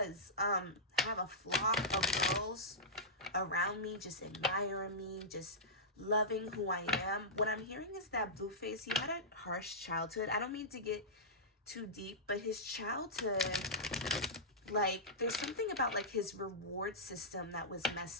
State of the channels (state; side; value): normal; both; correlation -0.13